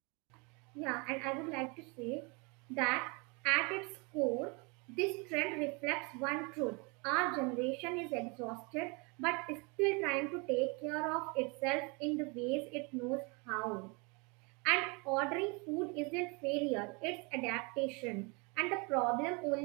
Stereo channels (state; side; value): quieter; left; 30.5 dB